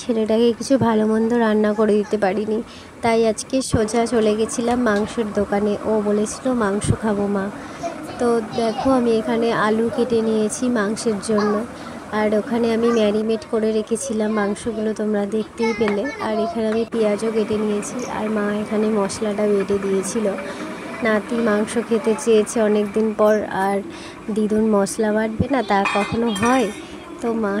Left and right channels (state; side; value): identical; both; correlation 1.00